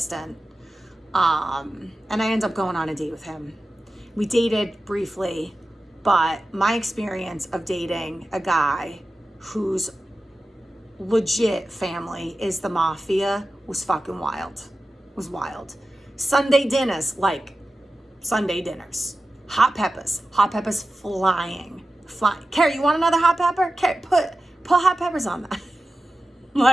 And I ended up going on a date with him. We dated briefly, but my experience of dating a guy whose legit family is the mafia was fucking wild. It was wild. Sunday dinners, like Sunday dinners. Hot peppers flying. Carrie, you want another hot pepper? Carrie, put hot peppers on that.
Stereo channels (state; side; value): normal; both; correlation 0.94